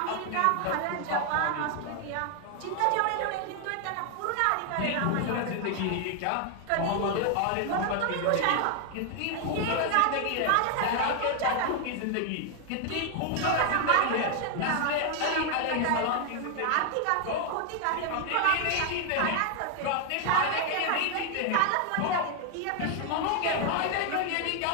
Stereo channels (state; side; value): different; both; correlation 0.00